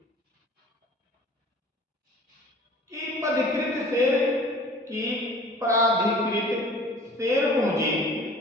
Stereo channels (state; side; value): normal; both; correlation 0.46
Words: की प्राधिकृत शेयर पूंजी